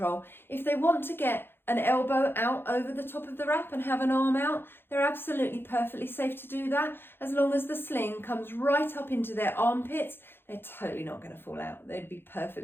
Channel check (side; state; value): right; late; 0.10 ms